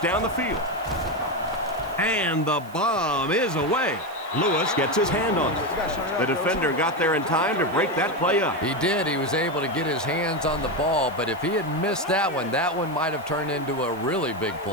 the field. And the bomb is away. Lewis gets his hand on it. The defender got there in time to break that play up. He did. He was able to get his hands on the ball, but if he had missed that one might have turned into a really big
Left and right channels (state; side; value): noise; right; hiss, 24 dB below the sound